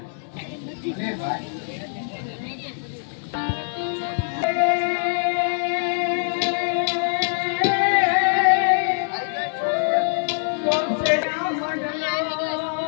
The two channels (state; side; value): silent; right; digital silence